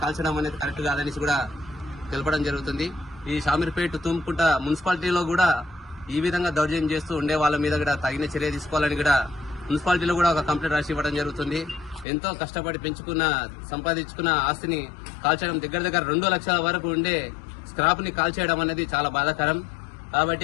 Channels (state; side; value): drops out; right; at 12.1 s